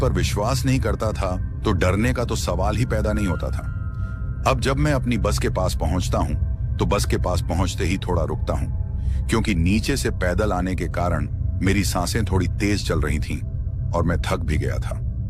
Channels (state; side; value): identical; both; correlation 1.00